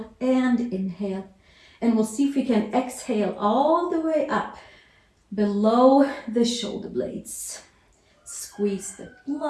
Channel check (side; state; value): both; identical; correlation 1.00